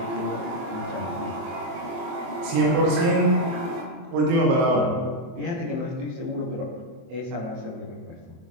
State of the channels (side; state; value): left; late; 23 ms